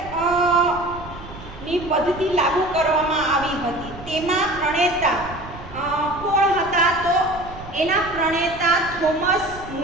ની પદ્ધતિ લાગુ કરવામાં આવી હતી. તેમાં પ્રણેતા કોણ હતા તો એના પ્રણેતા થોમસ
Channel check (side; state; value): right; noise; rumble, 15 dB below the sound